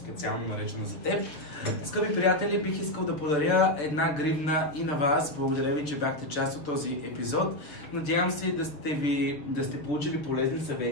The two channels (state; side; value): late; right; 6.7 ms